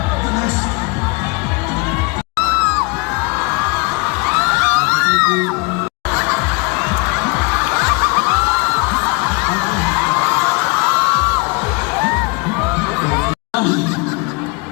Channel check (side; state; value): right; quieter; 29.7 dB